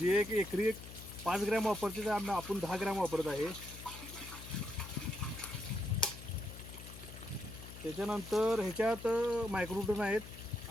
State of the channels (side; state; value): left; noise; hum, 13 dB below the sound